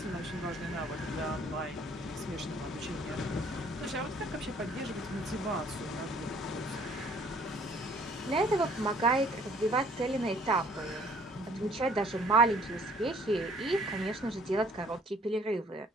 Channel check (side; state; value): both; normal; correlation 0.57